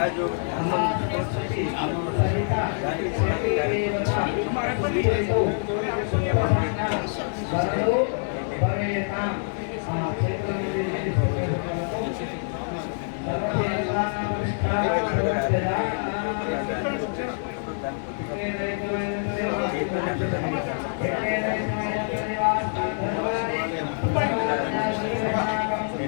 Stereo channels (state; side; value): silent; right; digital silence